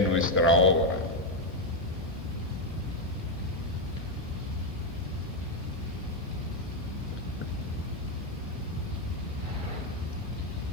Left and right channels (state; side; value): normal; both; correlation 0.04